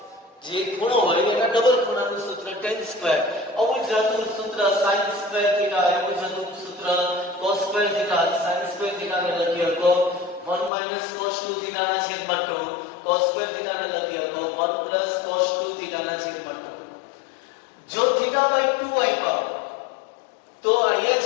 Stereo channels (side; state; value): right; drops out; at 10.7 s